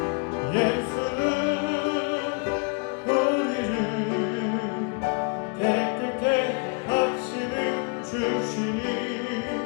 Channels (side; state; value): right; quieter; 33.6 dB